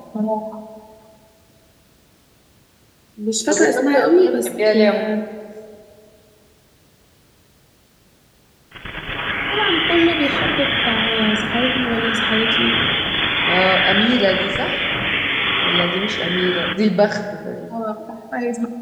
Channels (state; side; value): identical; both; correlation 1.00